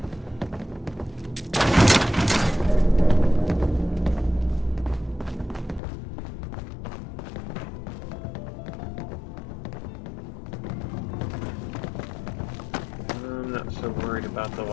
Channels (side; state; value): right; drops out; at 5.8 s